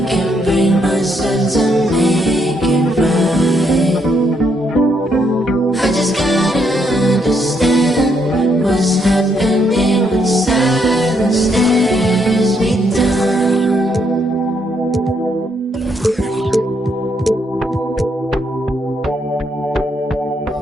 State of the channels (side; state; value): both; normal; correlation 0.75